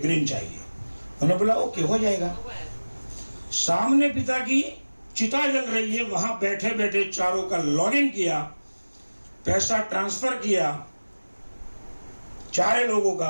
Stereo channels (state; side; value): inverted; both; correlation -1.00